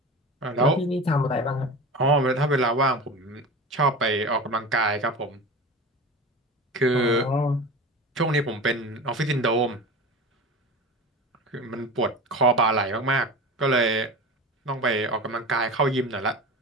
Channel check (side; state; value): both; normal; correlation 0.31